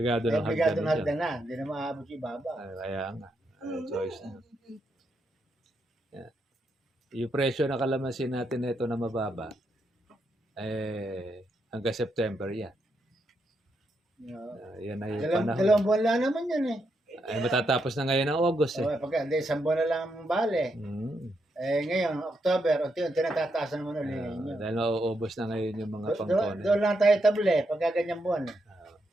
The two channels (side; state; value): both; normal; correlation 0.81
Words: ng Obligado na hagdan. hagdan na. Hindi na maabot yung ibaba. Kaya nga. Choice na. Yan. Yung presyo ng kalamansi natin na ito na mababa, hanggang September yan. Yan ay panahon. Dalawang buwan lang naman yan eh. Ay matatapos na ngayon ng August Pagka, hindi, isang buwan na lang ang bale. Ngayon, October, unti-unti natataasan naman ulit ninyo. Dahil mauubos na ngayon yung mga pangkone. Doon lang tayo table pagka ganyang buwan.